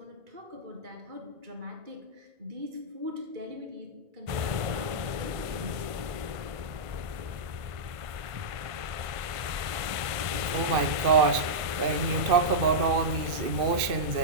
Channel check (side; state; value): left; late; 1.5 ms